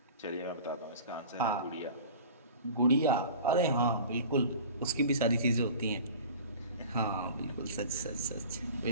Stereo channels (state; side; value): inverted; both; correlation -0.40